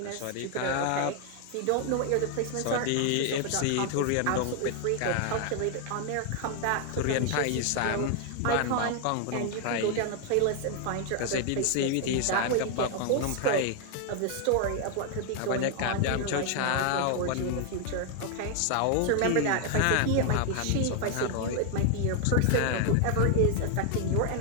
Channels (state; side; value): different; both; correlation 0.00